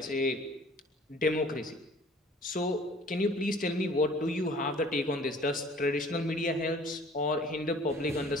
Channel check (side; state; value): both; normal; correlation 0.51